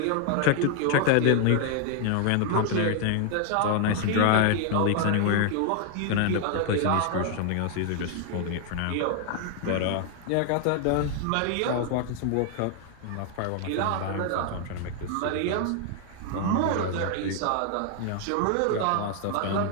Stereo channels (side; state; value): both; different; correlation 0.00